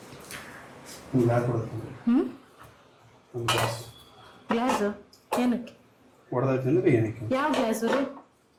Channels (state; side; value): identical; both; correlation 1.00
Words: ಗ್ಲಾಸ್ ಏನಕ್ಕೆ? ಯಾವ ಗ್ಲಾಸ್ ರೀ?